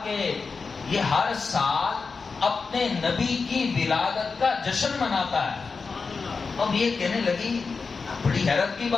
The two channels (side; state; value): right; quieter; 4.7 dB